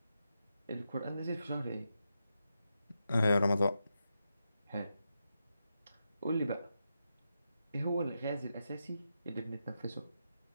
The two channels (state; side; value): inverted; both; correlation -0.86